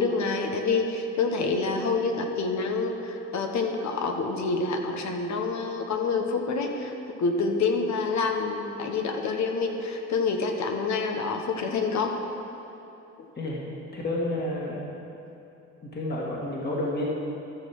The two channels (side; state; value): right; quieter; 3.4 dB